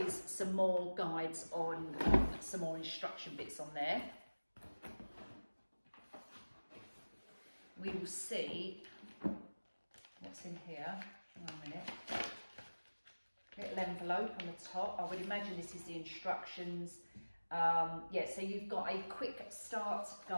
some more guides on some more instruction bits on there. We will see what's in here. One minute. Little envelope on the top. I would imagine this is the instructions. Yeah, so you've got a quick start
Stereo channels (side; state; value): both; inverted; correlation -1.00